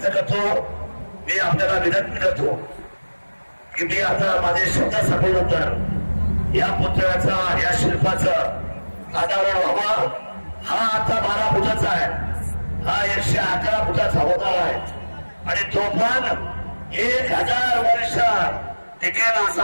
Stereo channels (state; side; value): inverted; both; correlation -1.00